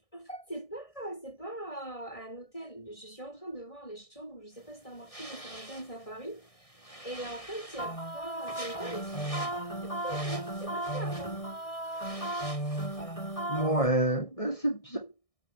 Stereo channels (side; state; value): right; late; 1.6 ms